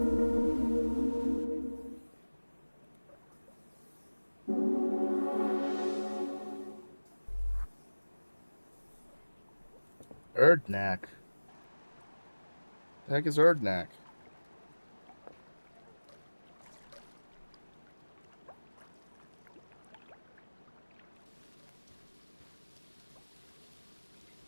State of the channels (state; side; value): inverted; both; correlation -1.00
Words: Erdnak. The heck is Erdnak?